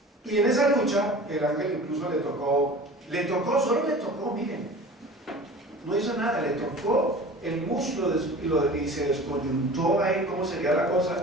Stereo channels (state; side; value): normal; both; correlation 0.40